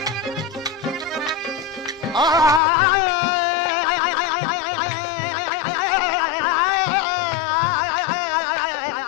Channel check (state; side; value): drops out; right; at 2.6 s